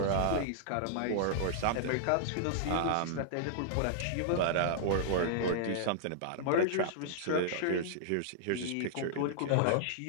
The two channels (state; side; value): different; both; correlation -0.01